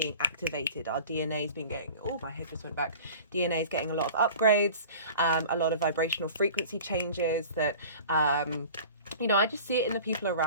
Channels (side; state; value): both; inverted; correlation -0.41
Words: activated. Our DNA has been getting, oh, my head just went back. DNA is getting a lot of upgrades, a lot of vibrational frequency changes that you know, I just see it in the people